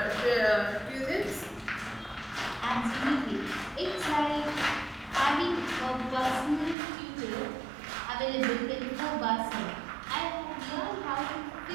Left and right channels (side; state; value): left; drops out; at 6.8 s